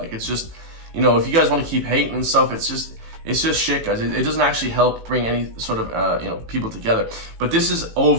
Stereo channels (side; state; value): left; late; 18 ms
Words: it's just, you know, if you guys want to keep hating and stuff, it's just shit, guys. It doesn't actually help bring any sort of you know, people together. But this is